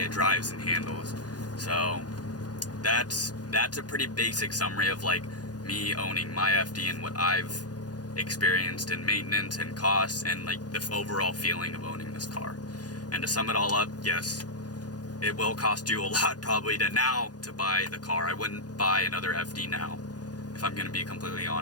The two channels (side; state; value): right; late; 0.69 ms